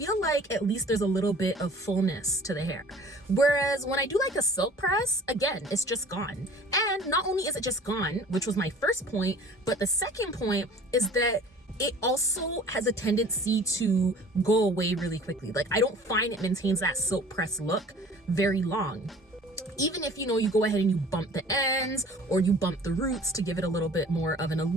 like at least there's a little bit of fullness to the hair. Whereas when I do like a silk press, again, it's just gone. And not only is it just gone, which was my first point, but the second point is that it also has a tendency to go away really quickly. Like, I don't find it maintains that silk press look very long. Even if, you know, you go ahead and you bump the ends or you bump the roots to give it a little bit more of an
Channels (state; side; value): normal; both; correlation 0.47